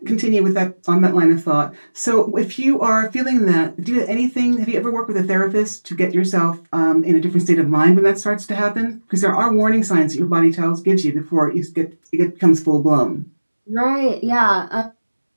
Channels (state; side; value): inverted; both; correlation -1.00